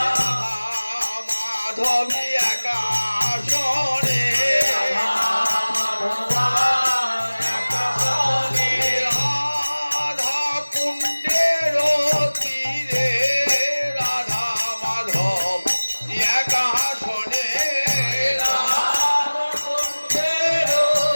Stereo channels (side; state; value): both; inverted; correlation -1.00